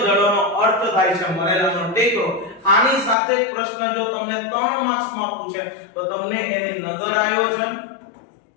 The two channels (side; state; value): right; drops out; at 3.2 s